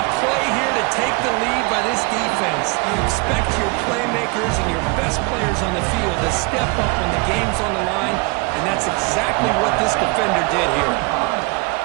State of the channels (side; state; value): left; quieter; 27.7 dB